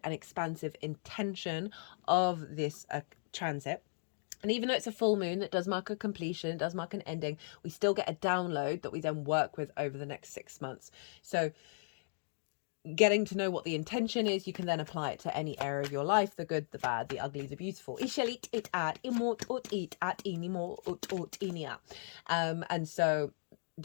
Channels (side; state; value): right; silent; digital silence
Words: and expansive intention of this transit. And even though it's a full moon that does mark a completion, it does mark an ending, we still get a download that we then work with over the next 6 months. So getting to know what the intention is, you can then apply it to any area of your life, the good, the bad, the ugly, the beautiful. And so